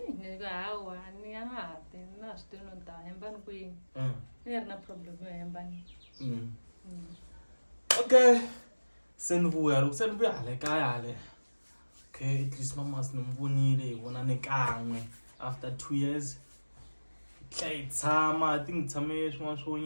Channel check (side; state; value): both; inverted; correlation -1.00